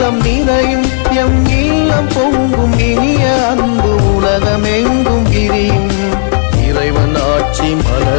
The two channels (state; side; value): silent; right; digital silence